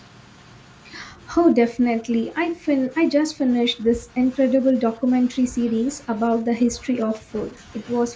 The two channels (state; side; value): identical; both; correlation 1.00